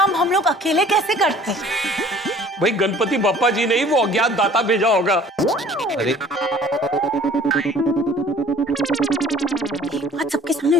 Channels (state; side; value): normal; both; correlation 0.51